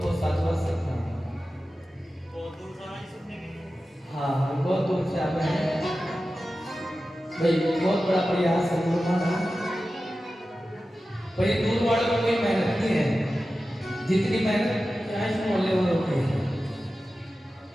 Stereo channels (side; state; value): both; normal; correlation 0.94